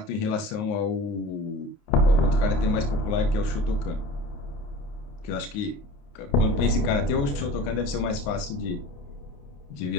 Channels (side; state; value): right; late; 29 ms